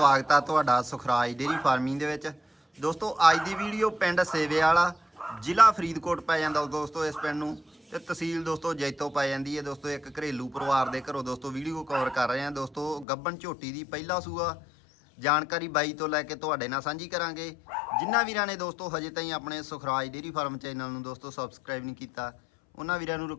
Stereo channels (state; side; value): drops out; right; at 13.1 s